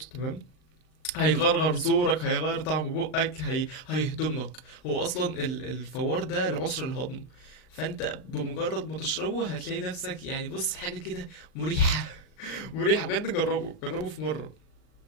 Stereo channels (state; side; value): late; right; 39 ms